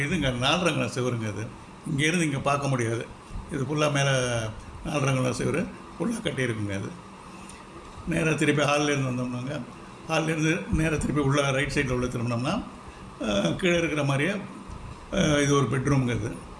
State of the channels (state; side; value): identical; both; correlation 1.00